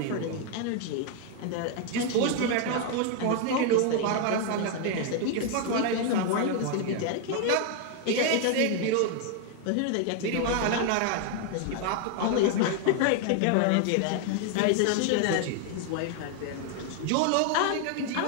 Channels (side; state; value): both; different; correlation 0.00